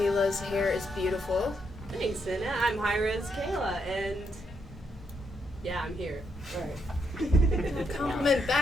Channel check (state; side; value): normal; both; correlation 0.78